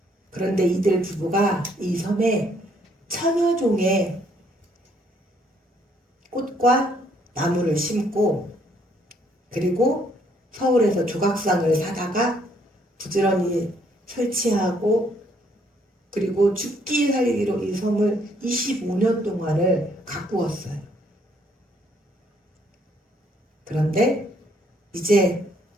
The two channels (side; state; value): both; normal; correlation 0.67